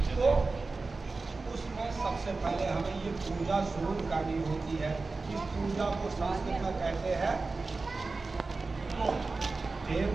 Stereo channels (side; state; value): left; quieter; 3.8 dB